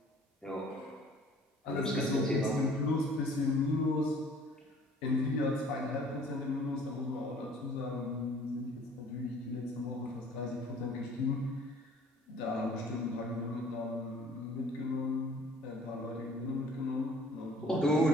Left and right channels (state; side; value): normal; both; correlation 0.53